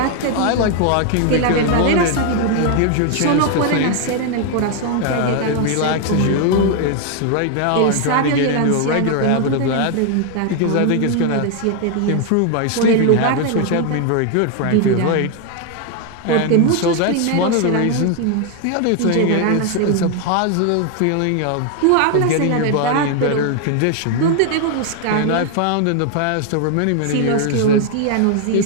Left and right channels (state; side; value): different; both; correlation 0.00